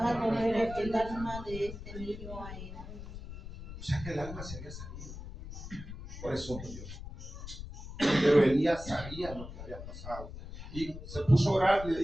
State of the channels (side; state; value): left; noise; rumble, 11 dB below the sound